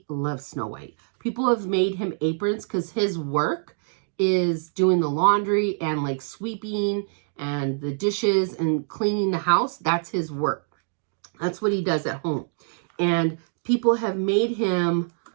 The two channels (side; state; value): left; silent; digital silence